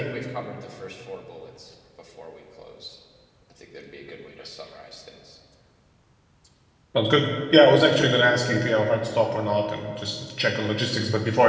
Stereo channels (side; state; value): both; identical; correlation 1.00